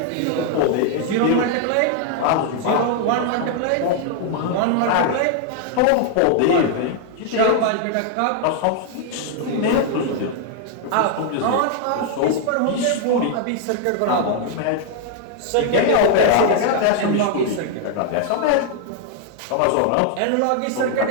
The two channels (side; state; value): both; different; correlation 0.00